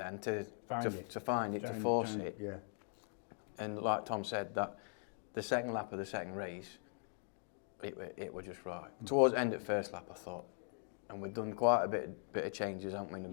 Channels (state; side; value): silent; right; 51 dB below the other